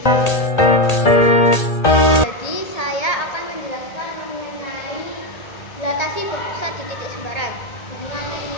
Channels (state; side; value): late; right; 1.8 ms